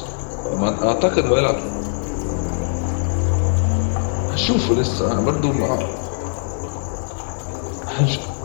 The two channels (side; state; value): right; silent; digital silence